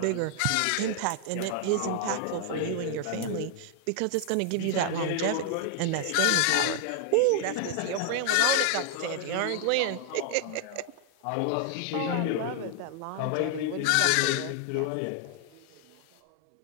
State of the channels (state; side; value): different; both; correlation 0.00